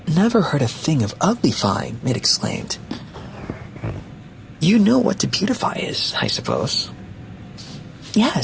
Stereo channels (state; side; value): identical; both; correlation 1.00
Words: Never heard a thing of uglifying, it exclaimed. You know what to beautify is, I suppose.